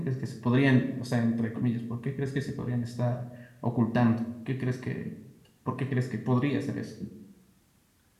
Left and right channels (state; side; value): identical; both; correlation 1.00